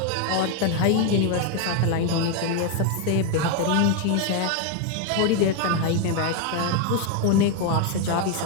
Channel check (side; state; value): both; different; correlation 0.01